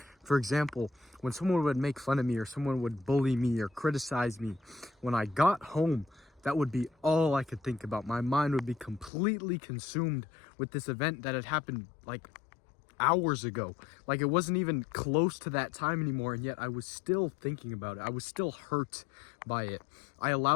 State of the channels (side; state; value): right; drops out; at 9.1 s